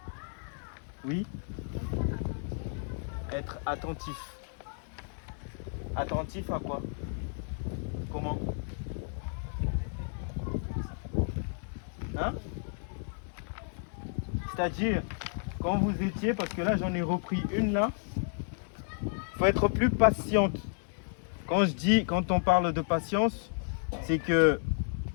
Oui. Être attentif. Attentif à quoi? Comment? Hein? C'est-à-dire, quand vous étiez, parce que là j'en ai repris une là, il faut être plus patiente. Quand on parle de patience, c'est que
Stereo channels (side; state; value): right; silent; 56 dB below the other